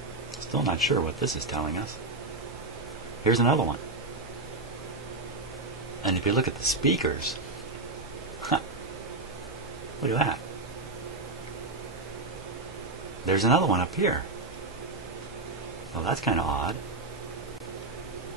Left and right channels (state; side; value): quieter; left; 3.2 dB